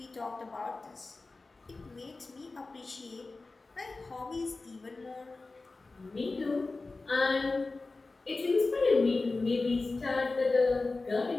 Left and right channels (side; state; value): right; quieter; 3.5 dB